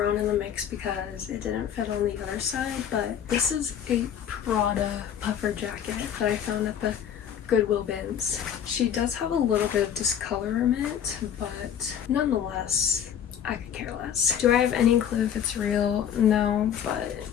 in the mix because it didn't fit on the other side, but this is a Prada puffer jacket that I found at the Goodwill bins. She does have a little bit of discolorment, but nonetheless, I could care less. Do I have any clue if it's real? No, but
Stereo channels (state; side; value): quieter; right; 9.0 dB